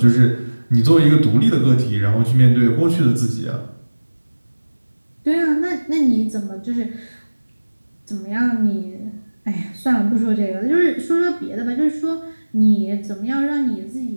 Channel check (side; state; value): both; inverted; correlation -1.00